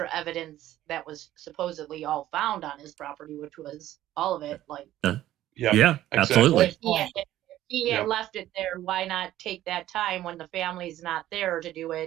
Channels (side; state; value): left; quieter; 13.8 dB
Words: evidence that was supposedly all found on his property, which was all of it. Yeah, absolutely. If he had left it there, why not take that time when the family's not there to do